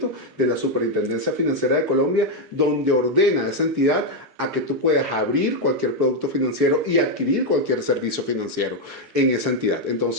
de la Superintendencia Financiera de Colombia donde ordena a esa entidad a que tú puedas abrir cualquier producto financiero y adquirir cualquier servicio financiero en esa entidad.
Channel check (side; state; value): both; normal; correlation 0.03